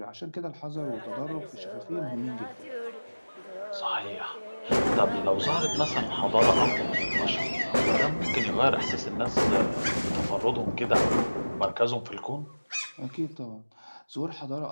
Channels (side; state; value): both; inverted; correlation -1.00